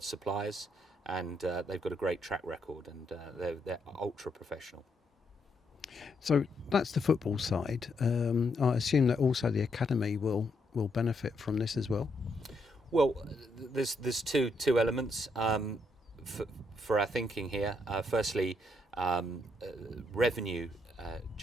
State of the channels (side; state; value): both; normal; correlation 0.76